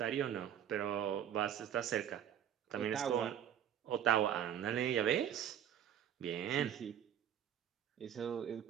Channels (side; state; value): left; quieter; 9.7 dB